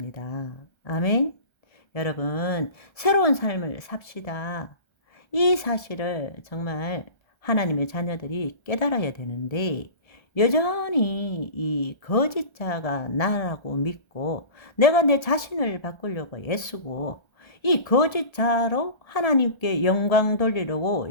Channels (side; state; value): right; late; 1.3 ms